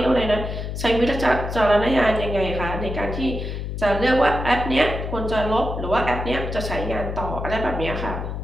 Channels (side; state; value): left; noise; hum, 5 dB below the sound